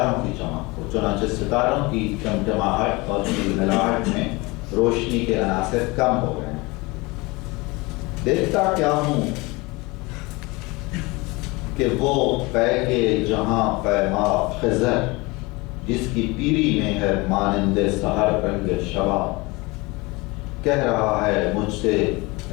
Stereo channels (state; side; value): quieter; right; 24.4 dB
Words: کی چمک کو، چنانچہ ستاروں کی چمچماہٹ اور جھلملاہٹ میں روشنی کے عناصر کم ہو گئے ہیں۔ دیکھتا کیا ہوں کہ وہ پے کے جہاں پیما خضر، جس کی پیری میں ہے مانند سحر رنگ شباب، کہہ رہا ہے مجھ سے